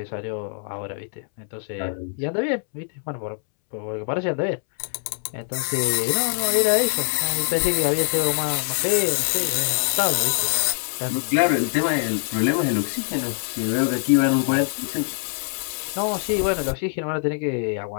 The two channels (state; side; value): silent; right; 63 dB below the other